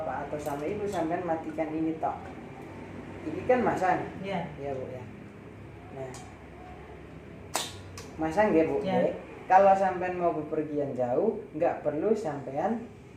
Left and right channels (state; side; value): identical; both; correlation 1.00